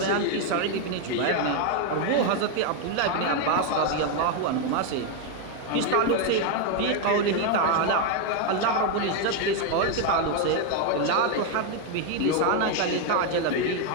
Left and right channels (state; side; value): different; both; correlation 0.01